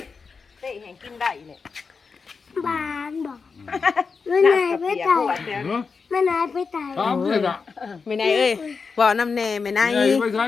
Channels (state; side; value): quieter; right; 5.1 dB